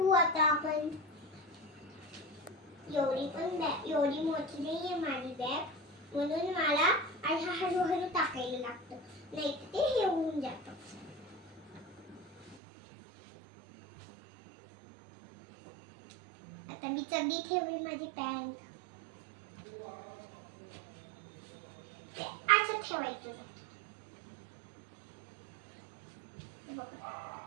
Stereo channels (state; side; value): drops out; left; at 12.6 s